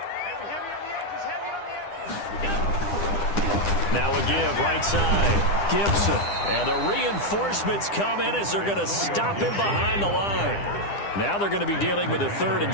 Now a give right side. Gibson. And the reinforcements come in as they're going to stop him behind the line. Now they're going to be dealing with a 3rd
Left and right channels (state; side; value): late; right; 9.9 ms